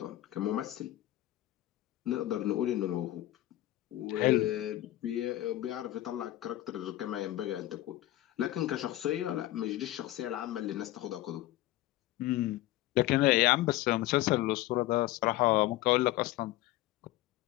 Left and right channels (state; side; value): quieter; right; 15.7 dB